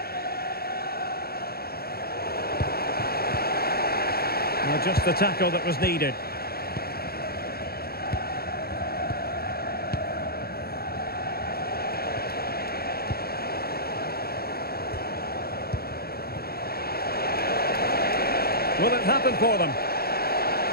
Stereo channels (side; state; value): right; late; 0.45 ms